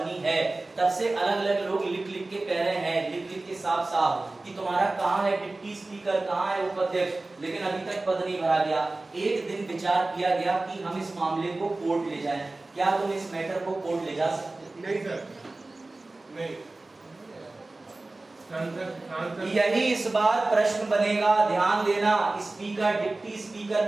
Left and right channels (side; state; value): left; quieter; 3.1 dB